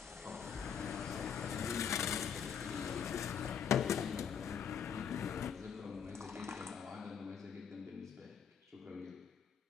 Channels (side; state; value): right; quieter; 7.5 dB